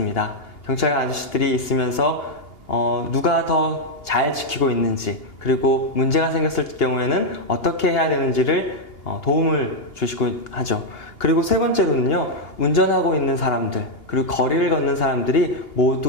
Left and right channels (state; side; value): late; right; 2.8 ms